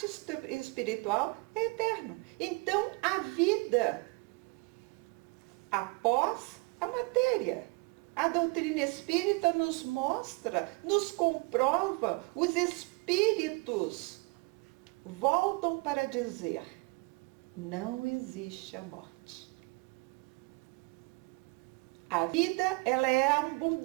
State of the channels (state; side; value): quieter; left; 28.0 dB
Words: espiritual é eterno. Então a vida após a matéria. A doutrina espírita nos mostra, nos comprova, os espíritos voltam para dizer: não existe a morte. A vida, ela é